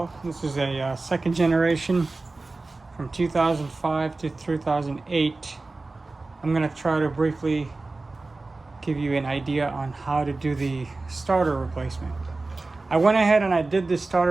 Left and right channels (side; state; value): left; quieter; 3.4 dB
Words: This is a second generation from 2005 to 2008. I'm going to try to briefly give you an idea on how to do the starter replacement. I went ahead and I did this